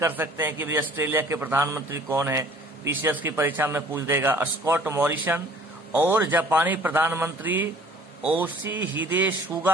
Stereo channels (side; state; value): both; normal; correlation 0.53